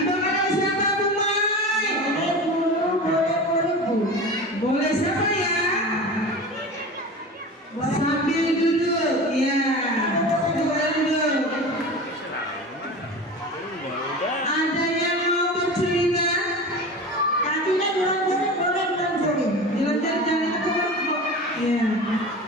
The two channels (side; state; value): both; normal; correlation 0.32